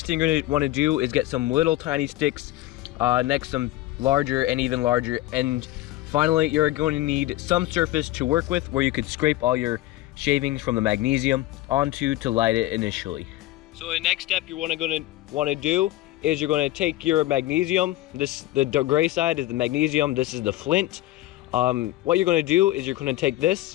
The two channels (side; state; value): right; quieter; 16.1 dB